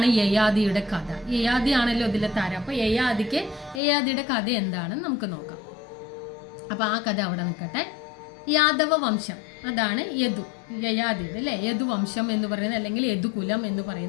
യയാതിയുടെ കഥ? യയാതി ആണല്ലോ ഇതിലെ താരം. അപ്പോൾ യയാതിയുടെ കഥ എന്താണെന്ന് നമുക്ക് നോക്കാം. അപ്പോൾ ആ കഥ അവിടെ നിൽക്കട്ടെ. യാദവ വംശം, അതാണ് യയാതിയുടെ അല്ലേ, യദുവംശം എന്ന് പറയുന്നത്, അല്ലെങ്കിൽ യദുകുലം എന്ന്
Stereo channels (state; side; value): drops out; right; at 3.8 s